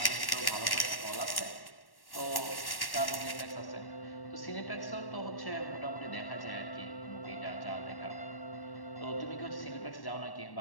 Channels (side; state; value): right; late; 1.1 ms